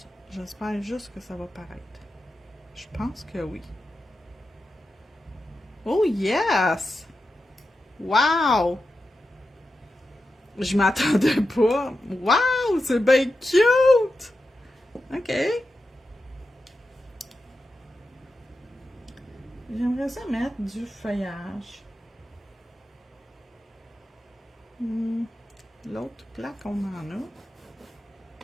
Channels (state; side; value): normal; both; correlation 0.90